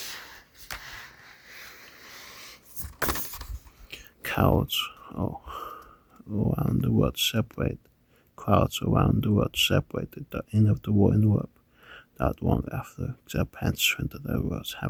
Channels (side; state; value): both; identical; correlation 1.00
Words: Crowds around the world separated the end of the war in Europe. Not long after Japan surrendered, the world